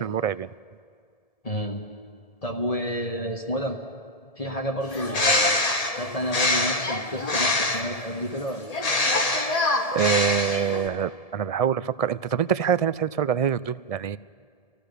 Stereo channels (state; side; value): late; right; 1.8 ms